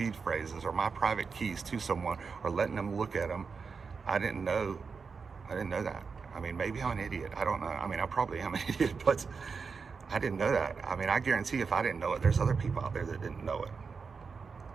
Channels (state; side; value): quieter; left; 5.2 dB